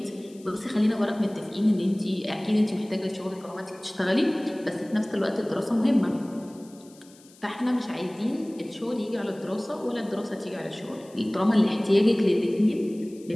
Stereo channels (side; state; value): left; noise; hiss, 26 dB below the sound